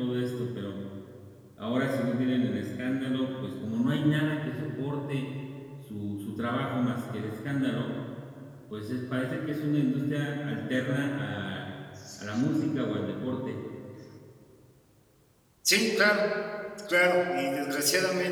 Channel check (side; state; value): both; identical; correlation 1.00